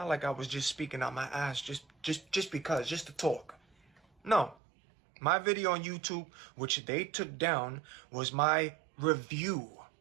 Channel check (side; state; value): left; drops out; at 4.5 s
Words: like I was just speaking out my ass just because, just to talk. No. My video on YouTube, which they took down, was my review